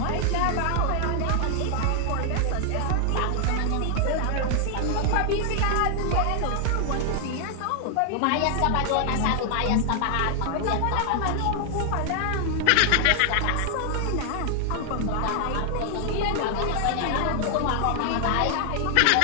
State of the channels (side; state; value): both; different; correlation 0.00